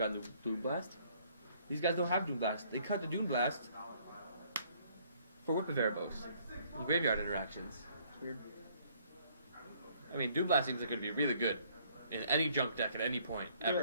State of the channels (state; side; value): inverted; both; correlation -0.62